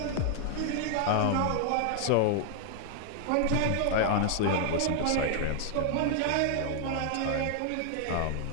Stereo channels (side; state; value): both; different; correlation 0.00